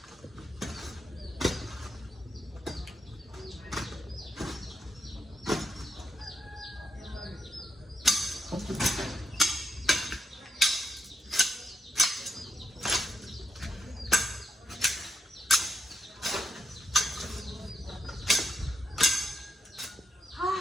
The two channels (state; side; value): normal; both; correlation 0.81